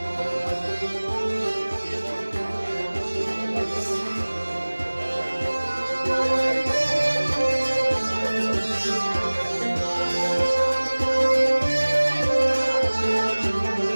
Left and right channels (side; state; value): both; inverted; correlation -1.00